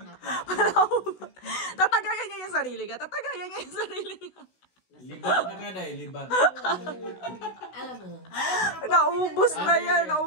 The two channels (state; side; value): late; right; 16 ms